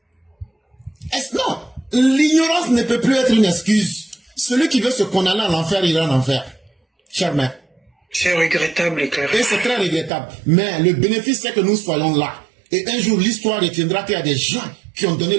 Non, l'ignorance ne peut plus être une excuse. Celui qui veut se condamner à l'enfer, il ira en enfer. Cher mère. C'est regrettable, et clair. Et c'est très regrettable. Mais le bénéfice, c'est que nous soyons là. Et un jour, l'histoire retiendra qu'il y a des gens qui ont donné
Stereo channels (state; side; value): drops out; left; at 10.1 s